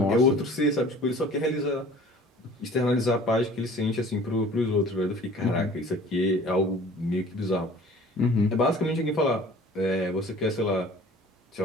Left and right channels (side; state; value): both; normal; correlation 0.47